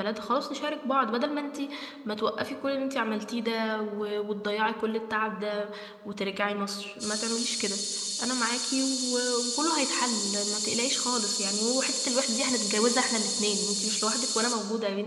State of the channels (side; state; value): both; identical; correlation 1.00